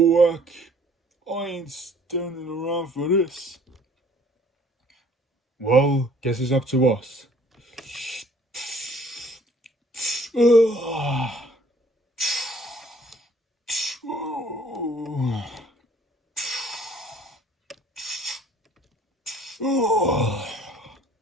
heck. I ain't standing around for this. Well, guess it's up to us.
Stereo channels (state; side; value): normal; both; correlation 0.57